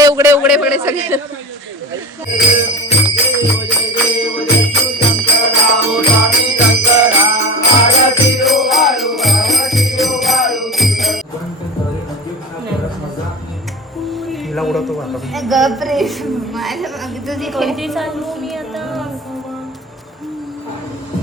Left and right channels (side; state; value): both; normal; correlation 0.30